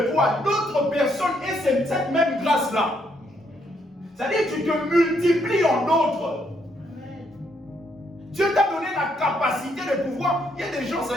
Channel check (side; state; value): both; normal; correlation 0.74